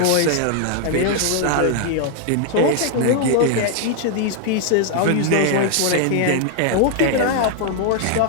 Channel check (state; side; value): different; both; correlation 0.00